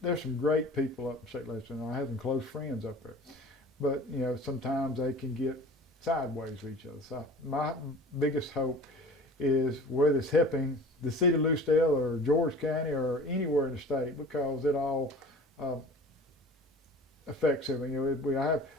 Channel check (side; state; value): both; normal; correlation 0.42